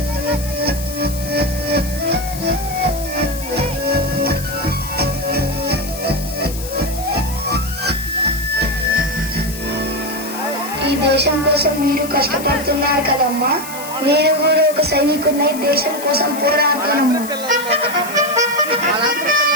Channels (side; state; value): left; noise; hiss, 12 dB below the sound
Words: ఈ దేశం కోసం మీరు కష్టపడుతున్నారు కదమ్మా, నేను కూడా ఒక సైనికుడినై దేశం కోసం పోరాడతానమ్మా.